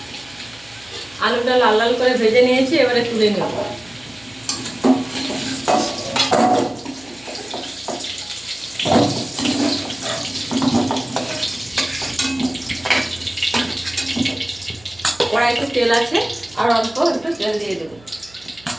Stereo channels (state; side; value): noise; right; hum, 26 dB below the sound